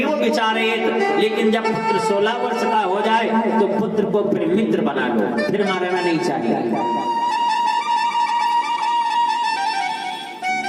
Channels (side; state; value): both; identical; correlation 1.00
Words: विचारेत, लेकिन जब पुत्र 16 वर्ष का हो जाए तो पुत्र को फिर मित्र बना लो, फिर मारना नहीं चाहिए।